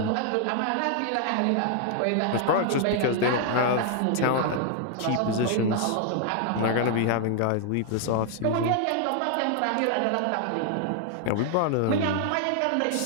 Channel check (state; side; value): different; both; correlation 0.00